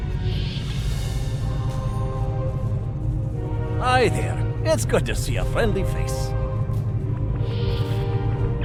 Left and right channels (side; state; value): both; identical; correlation 1.00